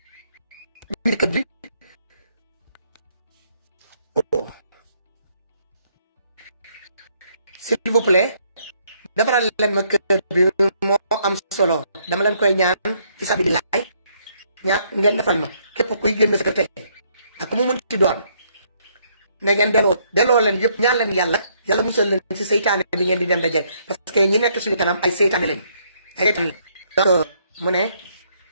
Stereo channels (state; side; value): inverted; both; correlation -0.69